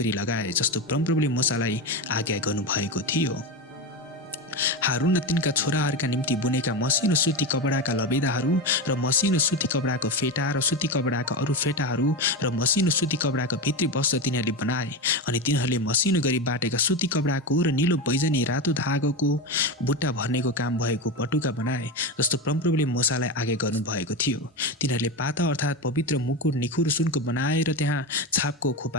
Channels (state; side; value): normal; both; correlation 0.18